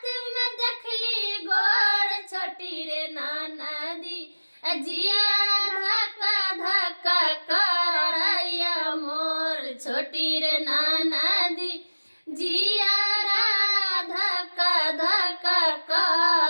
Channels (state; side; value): inverted; both; correlation -1.00